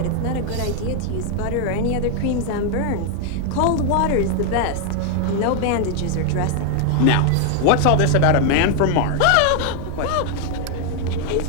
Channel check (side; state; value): both; different; correlation 0.00